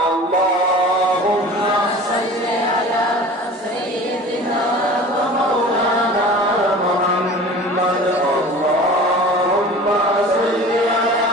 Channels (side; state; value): both; normal; correlation 0.40